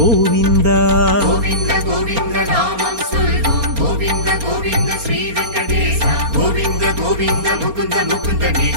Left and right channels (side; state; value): left; late; 4.3 ms